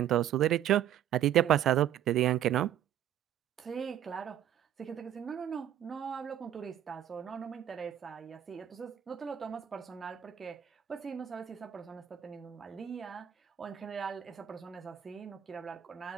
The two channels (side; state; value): left; quieter; 10.9 dB